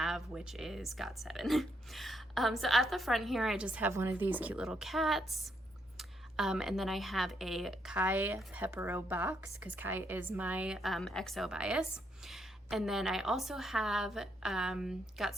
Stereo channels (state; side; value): normal; both; correlation 0.76